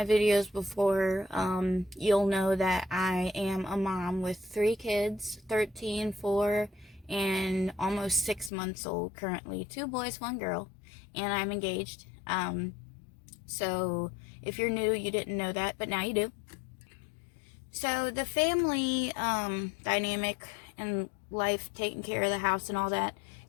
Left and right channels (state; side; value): drops out; right; at 8.5 s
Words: videos before, you'll know that I am a mom with 3 kids, 13, 4, and almost 6 months old currently. 2 boys, 1 girl, and I'm engaged. So if you're new, you didn't know that, but now you do. So the family dynamic and life, taking care of the house and all that,